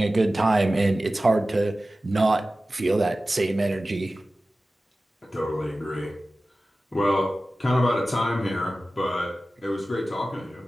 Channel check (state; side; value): normal; both; correlation 0.95